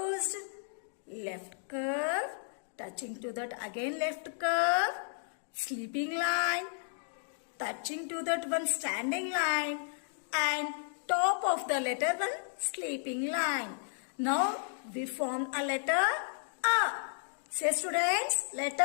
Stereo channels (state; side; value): silent; right; digital silence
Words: Left curve, touching to that again left curve, sleeping line, touching to that one standing line, and top of the letter one sleeping line. Now we form a letter A. Say students,